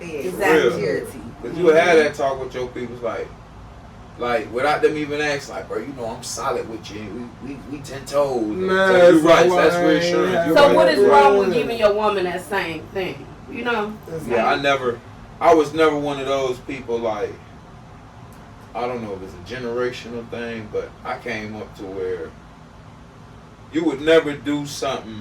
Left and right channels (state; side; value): identical; both; correlation 1.00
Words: is. Exactly. Security. Cause you had that talk with your people, like without them even asking, like, bro, you know I'm solid with you. We 10 toes. Nah, so you so right. why That's I ain't reassurance. have- You're So right. what is wrong with Yeah. giving your woman that same thing? You know? Yeah, I was never one of those people like, I don't know if it's a generational thing, but I came up to where you would never do